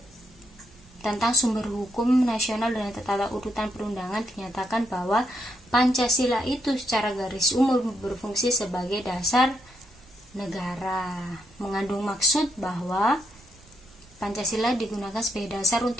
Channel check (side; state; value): both; normal; correlation 0.77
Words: tentang sumber hukum nasional dan tata urutan perundangan dinyatakan bahwa Pancasila itu secara garis umum berfungsi sebagai dasar negara, mengandung maksud bahwa Pancasila digunakan sebagai dasar